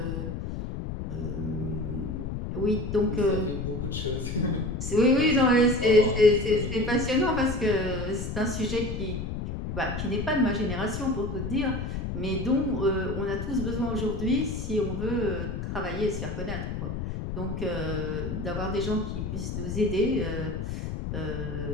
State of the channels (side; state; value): left; noise; rumble, 4 dB below the sound